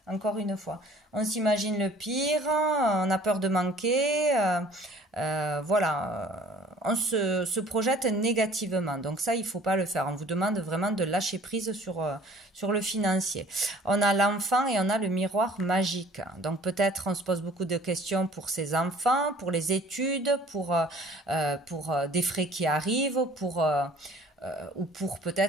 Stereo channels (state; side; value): normal; both; correlation 0.52